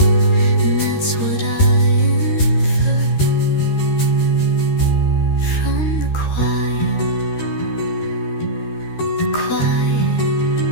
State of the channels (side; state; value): right; late; 13 ms